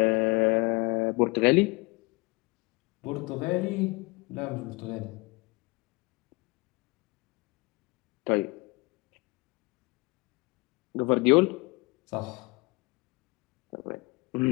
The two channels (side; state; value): right; quieter; 26.0 dB